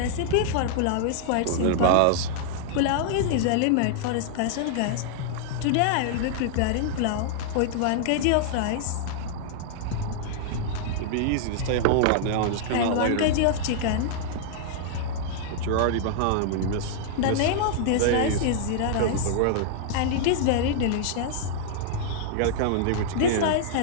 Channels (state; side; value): different; both; correlation -0.01